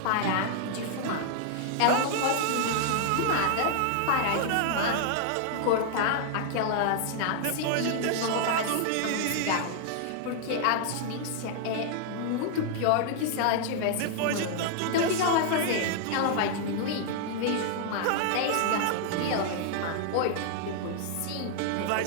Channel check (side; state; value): both; different; correlation 0.00